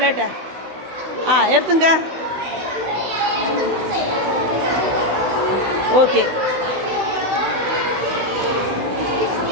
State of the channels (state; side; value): late; left; 16 ms